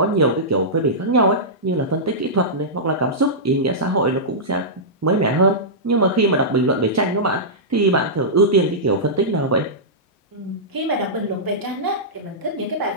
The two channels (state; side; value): normal; both; correlation -0.15